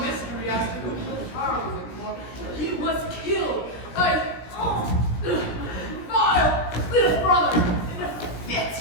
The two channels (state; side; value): late; right; 17 ms